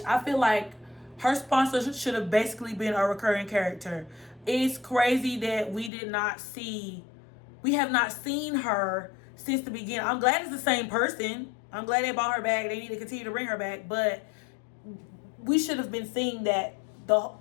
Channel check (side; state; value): right; drops out; at 5.9 s